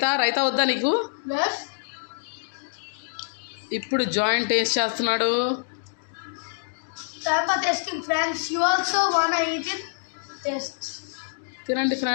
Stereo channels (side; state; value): right; silent; digital silence